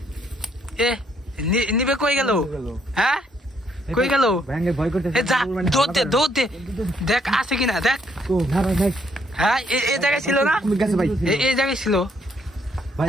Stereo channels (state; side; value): normal; both; correlation 0.70